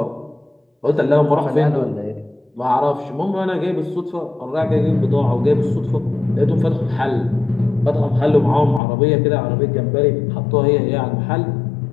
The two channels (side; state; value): right; drops out; at 8.8 s